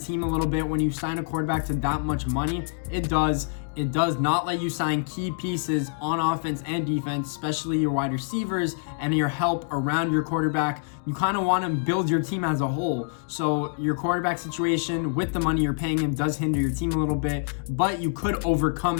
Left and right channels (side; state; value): right; silent; digital silence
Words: a little bit when you sign a quarterback to that much money? It does. It does not let you sign key pieces on offense and defense, especially your wide receivers and your help around your quarterback. You kind of want to build your team as a whole. So your quarterback situation with the money you're paying him does hinder your team a little bit, but you could overcome